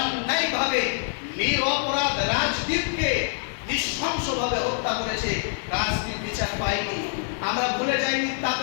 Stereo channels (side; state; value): right; silent; digital silence